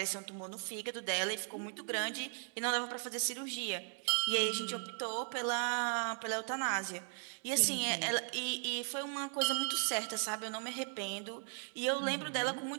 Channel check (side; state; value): left; silent; 53 dB below the other